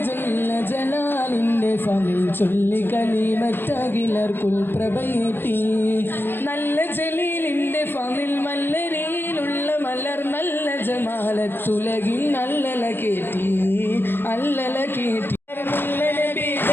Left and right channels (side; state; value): right; late; 0.10 ms